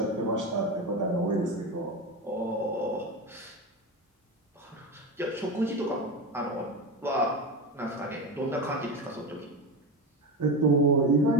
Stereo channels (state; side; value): normal; both; correlation 0.23